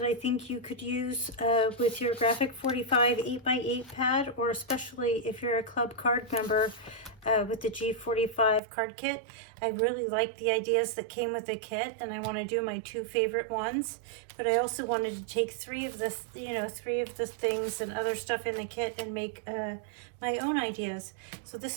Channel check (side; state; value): left; drops out; at 8.6 s